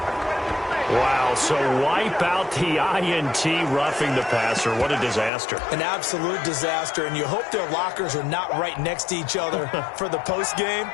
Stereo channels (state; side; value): drops out; right; at 5.3 s